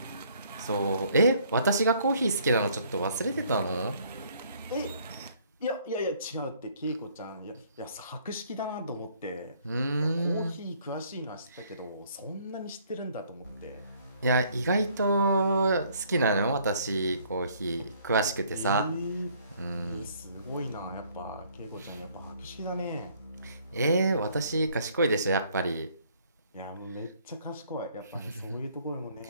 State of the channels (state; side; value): inverted; both; correlation -0.62